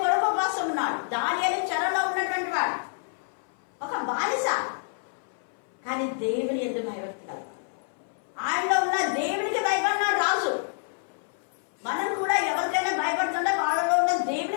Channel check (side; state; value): right; silent; 59 dB below the other